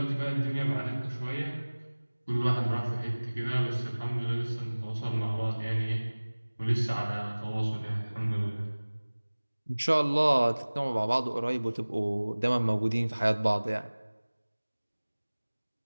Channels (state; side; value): inverted; both; correlation -1.00